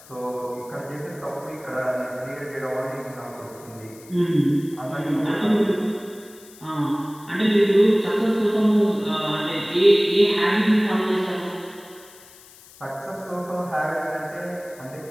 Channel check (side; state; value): left; noise; hiss, 22 dB below the sound